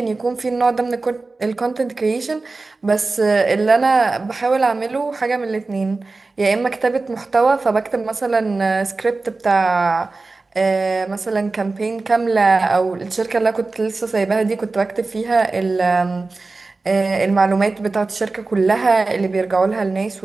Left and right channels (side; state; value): left; quieter; 3.6 dB